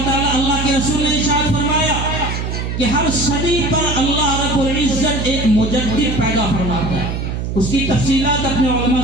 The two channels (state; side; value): noise; right; hum, 4 dB below the sound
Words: تعالیٰ، اللہ کے رسول نے ارشاد فرمایا کہ ہر صدی پر اللہ رب العزت ایک مجدد پیدا فرماتا ہے۔ اس کی تفصیلات اپنے علماء